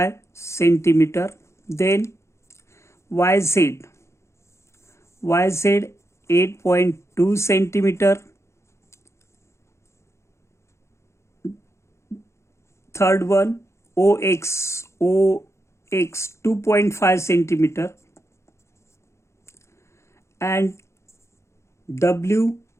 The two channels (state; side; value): late; right; 0.13 ms